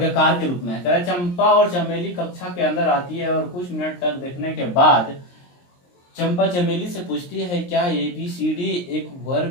के रूप में है। कह रहे चंपा और चमेली कक्षा के अंदर आती है और कुछ मिनट तक देखने के बाद चंपा चमेली से पूछती है, क्या ए बी सी डी एक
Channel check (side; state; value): right; late; 23 ms